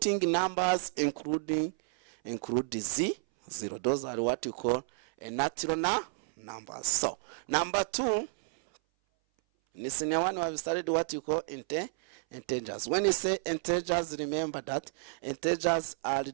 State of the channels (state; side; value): silent; left; 57 dB below the other